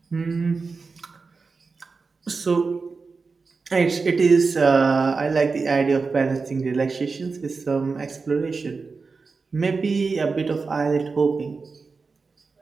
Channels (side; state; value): left; quieter; 4.5 dB